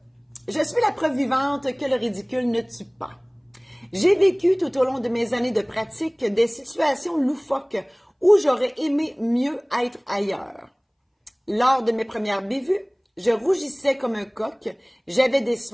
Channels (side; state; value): both; identical; correlation 1.00